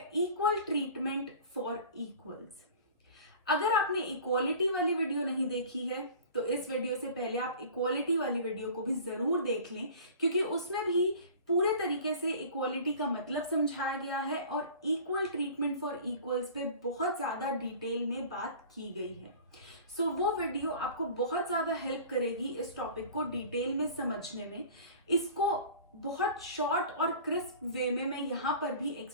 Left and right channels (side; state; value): both; inverted; correlation -0.42